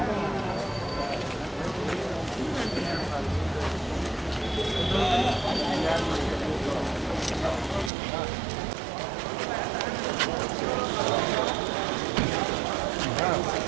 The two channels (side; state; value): left; drops out; at 7.9 s